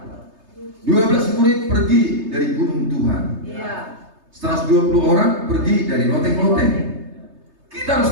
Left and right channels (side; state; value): left; late; 3.3 ms